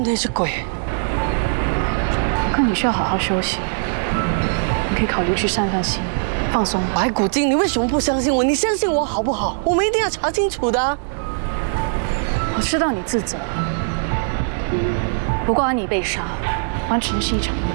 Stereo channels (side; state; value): left; silent; digital silence